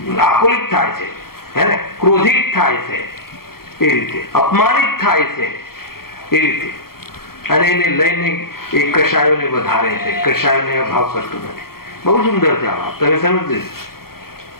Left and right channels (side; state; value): right; late; 0.94 ms